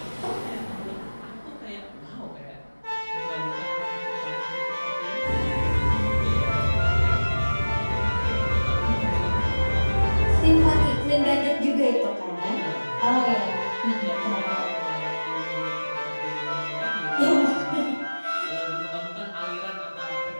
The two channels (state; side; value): inverted; both; correlation -1.00